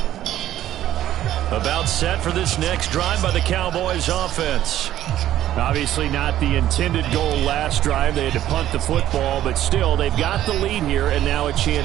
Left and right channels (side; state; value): left; quieter; 12.7 dB